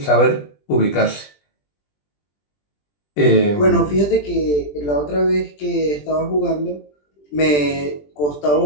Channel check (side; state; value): right; late; 20 ms